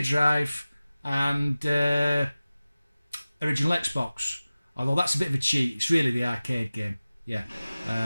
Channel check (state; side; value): inverted; both; correlation -0.97